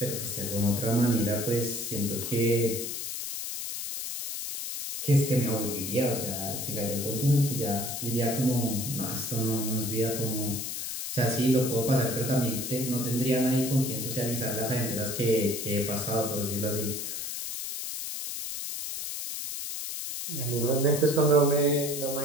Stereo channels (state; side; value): noise; left; hiss, 5 dB below the sound